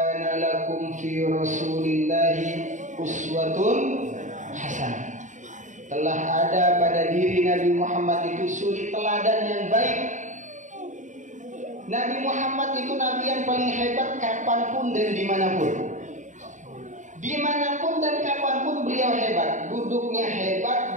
lakum fi rasulillahi uswatun hasanah. Telah ada pada diri Nabi Muhammad itu suri teladan yang baik. Nabi Muhammad itu Nabi yang paling hebat kapanpun dan dimanapun. Dimanapun dan kapanpun beliau hebat. Duduknya hebat,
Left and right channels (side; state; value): left; late; 0.36 ms